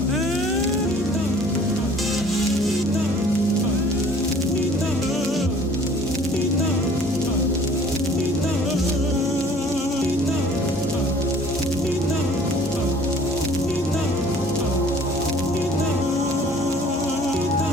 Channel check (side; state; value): both; normal; correlation 0.53